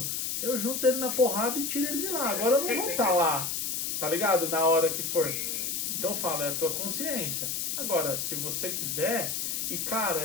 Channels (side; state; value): left; noise; hiss, 1 dB below the sound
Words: eu junto ele na porrada e tiro ele de lá. Agora eu não vou estar lá, tá ligado? Na hora que for. Então eu falo, é a tua consciência. Agora, se você quiser, e cara,